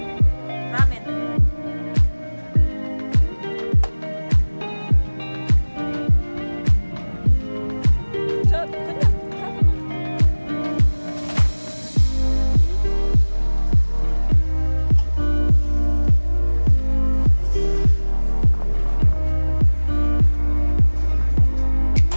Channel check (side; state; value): both; inverted; correlation -1.00